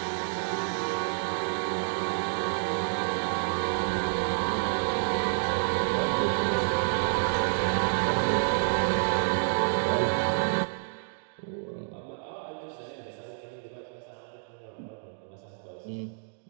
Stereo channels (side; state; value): left; silent; digital silence